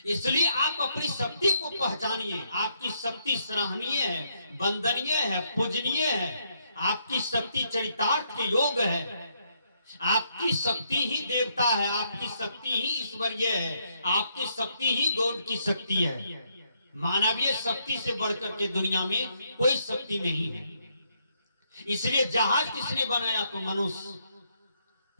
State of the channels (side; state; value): both; inverted; correlation -0.74